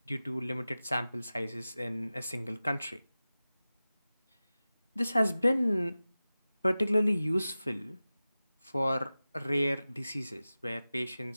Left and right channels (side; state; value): both; inverted; correlation -0.96